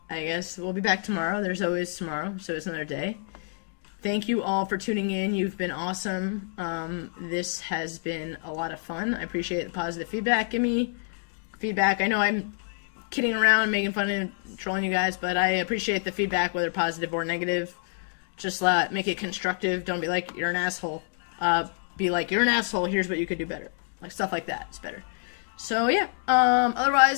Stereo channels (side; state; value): right; silent; digital silence